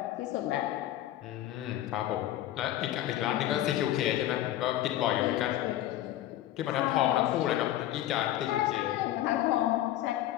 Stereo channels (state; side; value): quieter; right; 13.4 dB